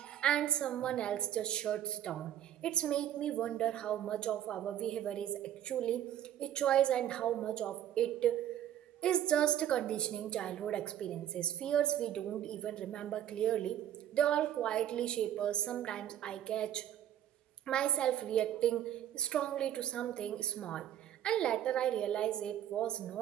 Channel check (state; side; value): quieter; left; 11.1 dB